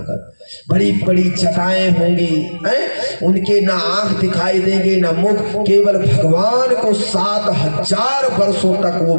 बड़ी बड़ी जटाएं होंगी, उनके ना आंख दिखाई देंगे ना मुख। केवल भगवान को 7,000 वर्षों तक वो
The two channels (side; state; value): both; inverted; correlation -1.00